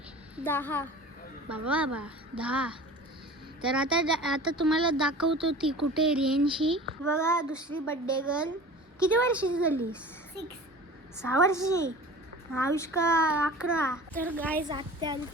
10. बाबा 10. तर आता तुम्हाला दाखवतो ती कुठे रेंजशी. बघा दुसरी बर्थडे गर्ल. किती वर्षाची झाली? 6 वर्षाची. आयुष्का 11. तर गाईज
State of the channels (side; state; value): both; normal; correlation 0.40